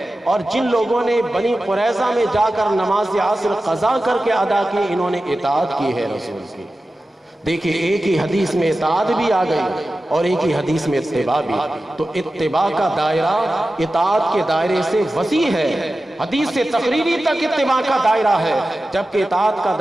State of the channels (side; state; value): both; normal; correlation 0.94